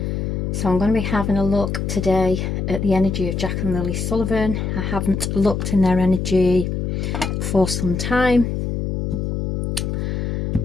So I'm going to be having a look today at the energy of Jack and Lily Sullivan. I haven't looked in their energy for some time.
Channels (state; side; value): noise; left; hum, 1 dB below the sound